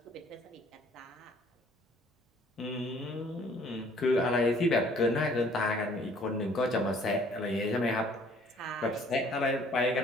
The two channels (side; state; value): both; normal; correlation 0.57